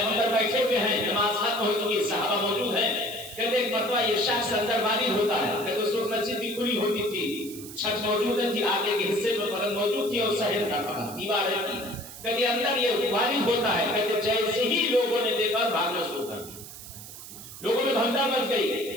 بیٹھے ہوئے ہیں، نماز ختم ہو چکی، صحابہ موجود ہیں۔ کہتے ایک مرتبہ یہ شخص اندر وارد ہوتا ہے، کہتے اس وقت مسجد بھی کھلی ہوتی تھی، چھت موجود تھی، آگے کے حصے میں بدن موجود تھی اور صحن کا فقط دیواریں تھی۔ کہتے اندر یہ وارد ہوتا ہے، کہتے جیسے ہی لوگوں نے دیکھا بھاگنا شروع کر دیا، لوگوں میں بھگدڑ مچ گئی۔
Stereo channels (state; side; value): noise; right; hiss, 14 dB below the sound